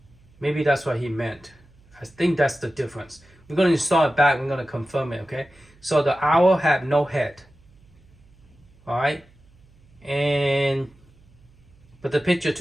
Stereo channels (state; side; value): noise; right; hum, 29 dB below the sound